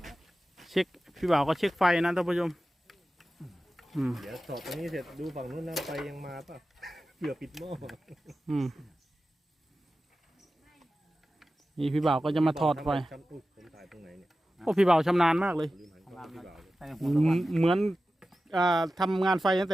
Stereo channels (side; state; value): both; normal; correlation 0.94